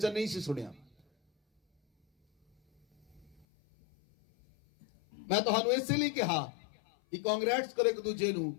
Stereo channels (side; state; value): right; drops out; at 3.5 s